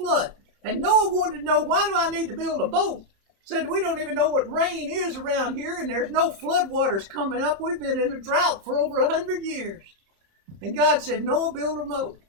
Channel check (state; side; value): late; left; 30 ms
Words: And Noah wanted to know, why do I need to build a boat? Said, we don't even know what rain is around here, and there's no flood waters coming up. We've been in a drought for over 100 years. And God said, Noah, build a boat.